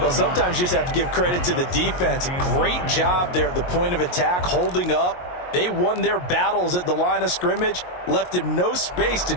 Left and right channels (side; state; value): right; late; 22 ms